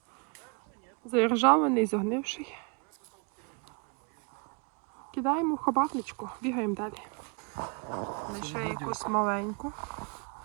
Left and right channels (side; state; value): left; quieter; 33.6 dB